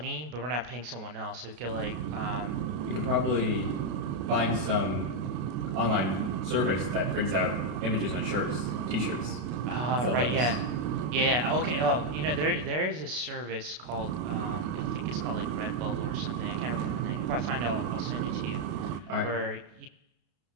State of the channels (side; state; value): left; late; 33 ms